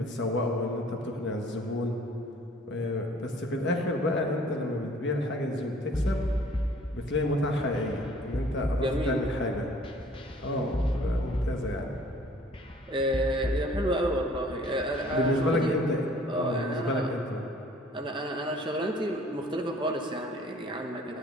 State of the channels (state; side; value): normal; both; correlation 0.54